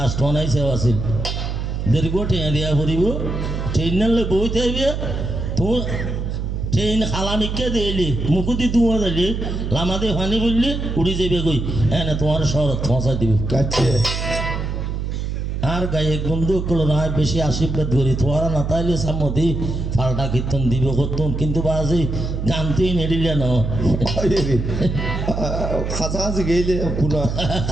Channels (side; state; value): right; noise; hum, 3 dB below the sound